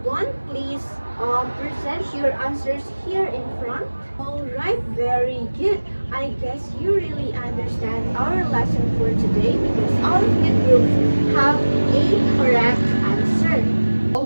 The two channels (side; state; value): both; inverted; correlation -1.00